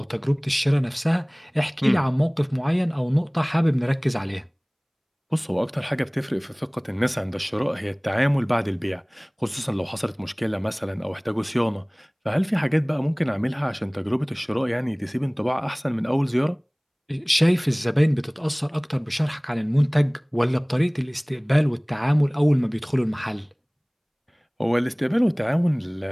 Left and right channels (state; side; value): identical; both; correlation 1.00